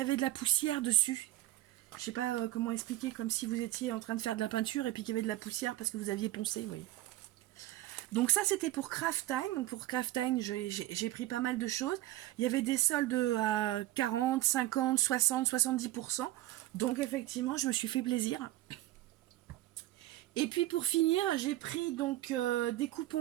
de la poussière dessus. Je sais pas comment expliquer, comme si vous étiez en train de faire de la peinture, et puis qu'il y avait de la poussière parce que vous aviez poncé, vous voyez. Donc ça c'était pour Craftime. Donc pour Craftime j'ai pris pas mal de choses. Il y avait des soldes à 40, 50, 60, 70%. Donc effectivement je me suis fait plaisir. Et puis pour finir j'ai pris donc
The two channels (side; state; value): left; quieter; 15.9 dB